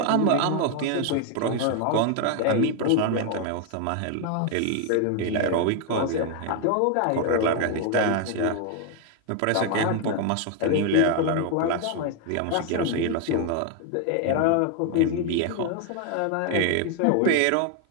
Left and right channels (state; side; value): different; both; correlation 0.01